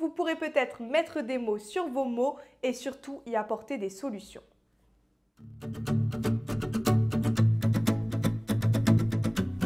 vous pourrez peut-être mettre des mots sur vos mots et surtout y apporter des solutions.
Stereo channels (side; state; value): both; identical; correlation 1.00